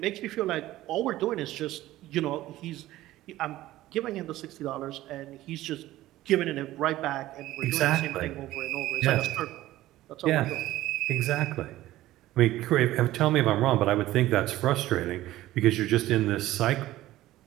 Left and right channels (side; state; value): left; quieter; 15.7 dB